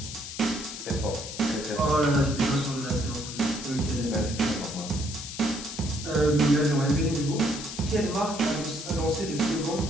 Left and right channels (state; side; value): noise; left; hiss, 9 dB below the sound